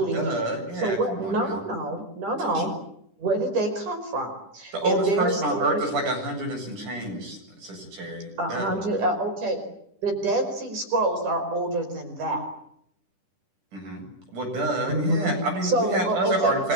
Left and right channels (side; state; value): left; late; 10 ms